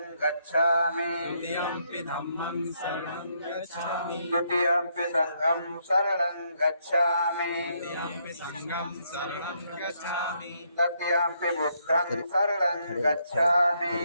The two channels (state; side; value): inverted; both; correlation -0.74